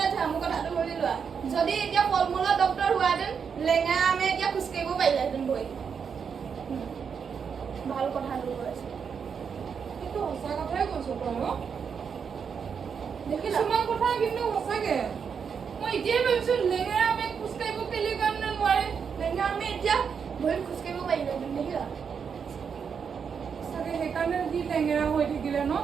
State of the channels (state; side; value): quieter; left; 6.6 dB